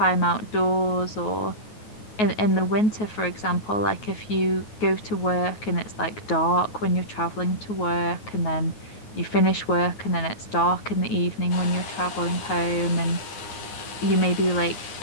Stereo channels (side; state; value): right; late; 9.4 ms